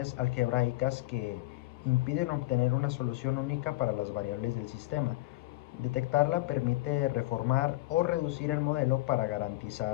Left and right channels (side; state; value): right; quieter; 18.6 dB